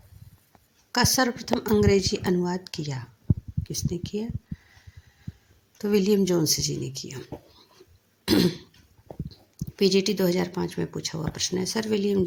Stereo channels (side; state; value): both; identical; correlation 1.00